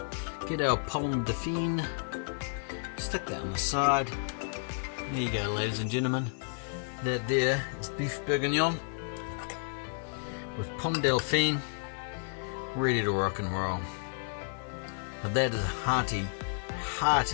Get our Pommes Dauphine. Stick that on the side. There you go, ladies and gentlemen. That there is Beef Bourguignon with Pommes Dauphine, ready to rock and roll. Now that is a hearty,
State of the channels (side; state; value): right; silent; digital silence